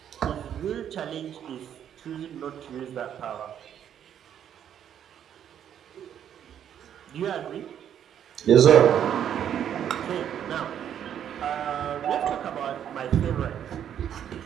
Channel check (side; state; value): left; quieter; 9.5 dB